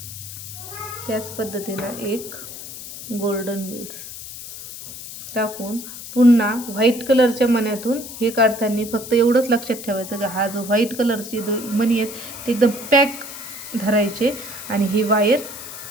त्याच पद्धतीनं एक गोल्डन बीड्स टाकून पुन्हा व्हाईट कलरच्या मण्यातून हे काढताना फक्त एवढंच लक्षात ठेवायचं का हा जो व्हाईट कलरचे मणी आहेत ते एकदम पॅक धरायचे आणि ही वायर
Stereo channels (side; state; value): left; noise; hiss, 12 dB below the sound